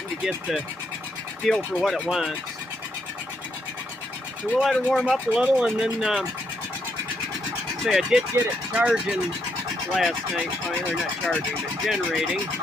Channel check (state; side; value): normal; both; correlation 0.76